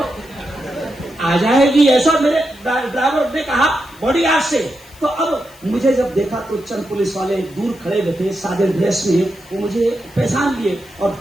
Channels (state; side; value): noise; left; hiss, 24 dB below the sound